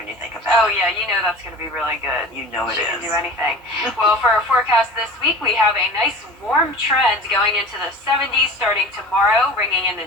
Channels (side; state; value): both; normal; correlation 0.38